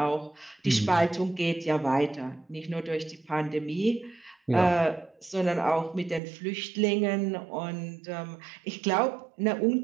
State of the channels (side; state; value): left; drops out; at 6.2 s